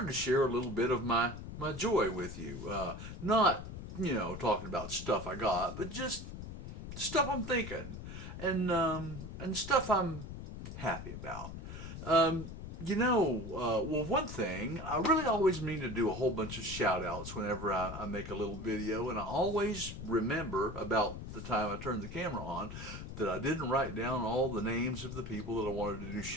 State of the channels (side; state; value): left; noise; rumble, 9 dB below the sound